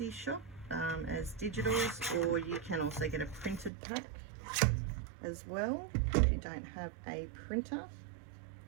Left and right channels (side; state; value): left; drops out; at 3.7 s